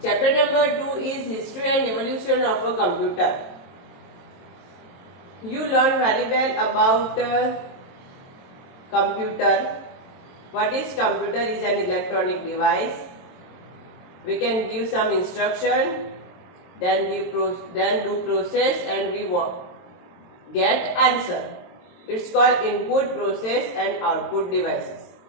Chapter number 2 is history and evolution of a computer. You learn very well about computer. What is computer? Is an electronic device. We can give some instruction, then do process, and we get answer. It's called input, process and output devices.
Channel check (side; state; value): right; late; 22 ms